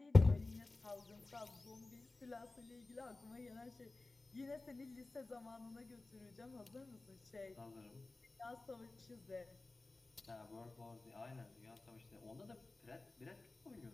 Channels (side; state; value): right; quieter; 3.2 dB